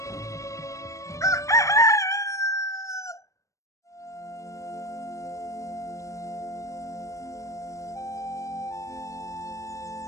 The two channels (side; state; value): right; late; 0.15 ms